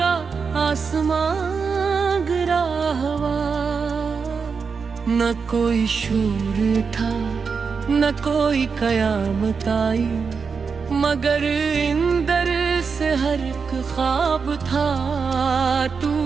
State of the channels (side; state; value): left; quieter; 5.4 dB